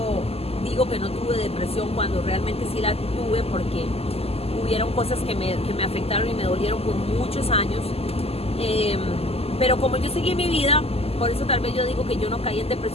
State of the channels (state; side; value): late; right; 0.29 ms